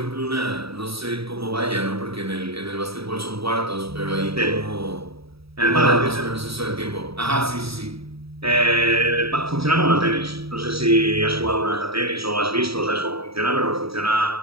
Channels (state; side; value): late; left; 0.77 ms